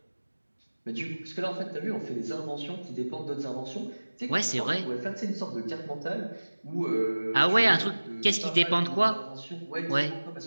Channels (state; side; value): inverted; both; correlation -1.00